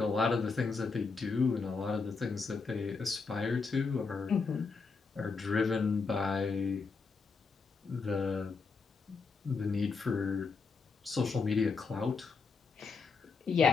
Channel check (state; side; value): quieter; right; 4.7 dB